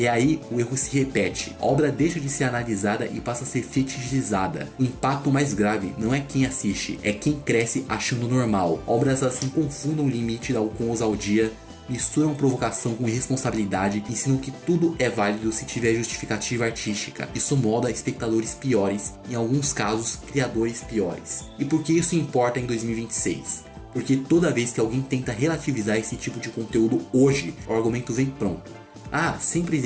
aí o erro se repete. A obra deixa de ser analisada e passa a ser fetichizada. O impacto mais grave não é quem assiste, é quem cresce achando normal. Obras assim confundam o limite com ousadia, misturam provocação com irresponsabilidade, ensinam que tudo é válido se tiver justificativa artística. Isso molda espectadores piores, em alguns casos criadores piores. E por que isso importa em 2026? Porque toda vez que alguém tenta relativizar esse tipo de conteúdo hoje, o argumento vem pronto. Ah, sempre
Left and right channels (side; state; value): both; identical; correlation 1.00